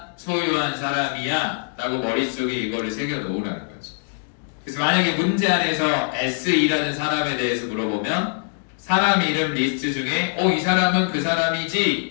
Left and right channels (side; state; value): right; silent; digital silence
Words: 소유한 사람이야 라고 머릿속에 이거를 새겨 놓으라는 거지. 그래서 만약에 문제 안에서 SE라는 사람에 대해서 물어보면 사람 이름 리스트 중에 이 사람은 그